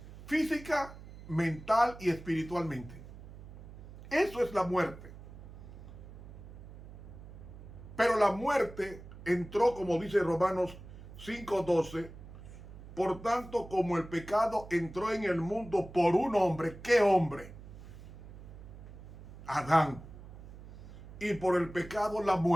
física, mental y espiritualmente. Eso es la muerte. Pero la muerte entró, como dice Romanos 5:12, por tanto, como el pecado entró en el mundo por un hombre, ¿qué hombre? Adán. Y por el pecado la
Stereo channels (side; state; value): right; noise; hum, 15 dB below the sound